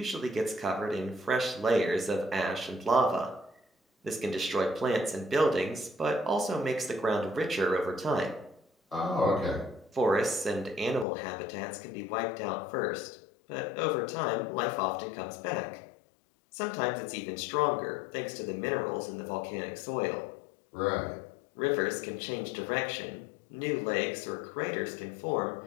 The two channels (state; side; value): drops out; right; at 11.1 s